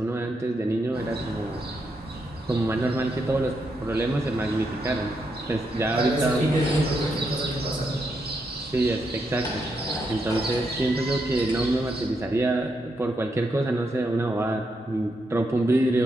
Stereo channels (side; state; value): both; normal; correlation 0.81